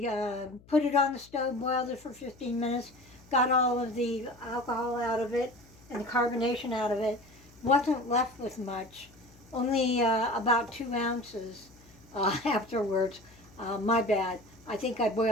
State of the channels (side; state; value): left; noise; hum, 25 dB below the sound